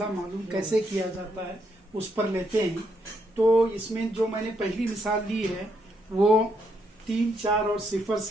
मालूम कैसे किया जाता है उस पर लेते हैं। तो इसमें जो मैंने पहली मिसाल ली है वो 3, 4 और 0,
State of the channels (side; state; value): both; normal; correlation 0.76